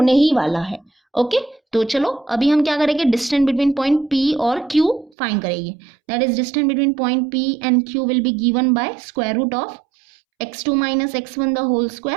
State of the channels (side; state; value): left; drops out; at 5.1 s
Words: ही वाला है। ओके, तो चलो अभी हम क्या करेंगे, डिस्टेंस बिटवीन पॉइंट P और Q फाइंड करेंगे। That is distance between point P and Q will be given by square root of x2 minus x1 the whole